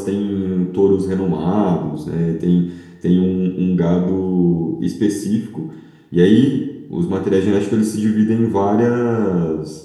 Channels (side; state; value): both; identical; correlation 1.00